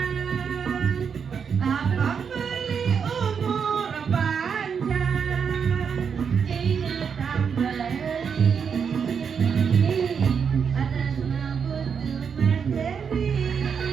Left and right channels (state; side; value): quieter; left; 6.6 dB